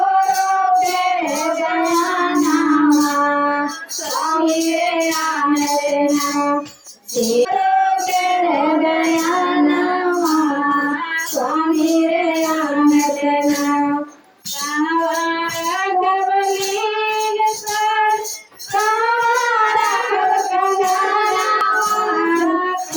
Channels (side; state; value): both; identical; correlation 1.00